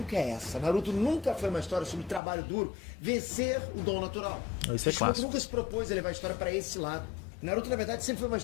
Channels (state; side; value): drops out; right; at 2.2 s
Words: é essa. Naruto nunca foi uma história sobre trabalho duro vencer o dom natural. Isso é clássico. Nunca se propôs a levar a história pra esse lado. Naruto, na verdade, sempre foi uma